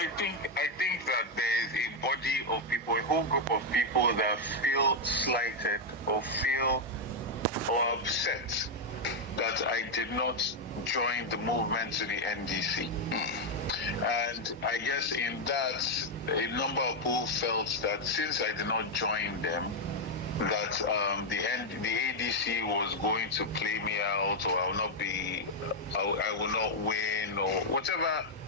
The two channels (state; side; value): normal; both; correlation 0.01